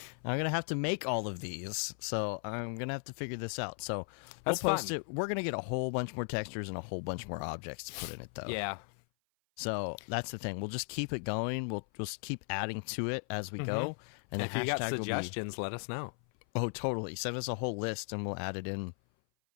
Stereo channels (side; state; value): right; silent; 53 dB below the other